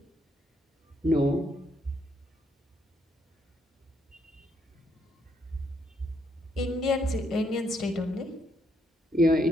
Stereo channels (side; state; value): both; normal; correlation 0.74